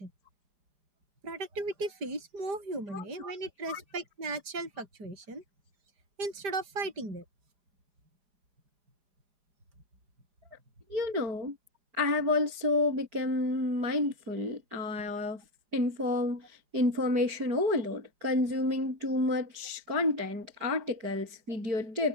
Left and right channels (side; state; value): left; late; 4.9 ms